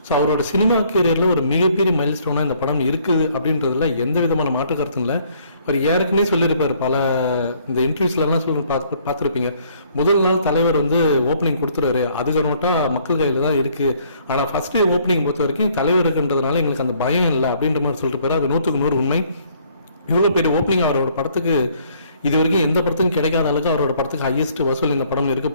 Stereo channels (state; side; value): inverted; both; correlation -0.63